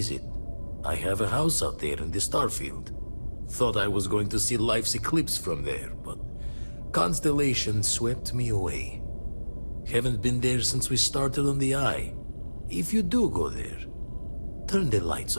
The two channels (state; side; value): inverted; both; correlation -1.00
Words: I have a house out there in the Starfield. Thought I was going to see life's eclipse from there, but Constellation swept me away. Haven't been there since we started on the Eye. If you do go there, turn the lights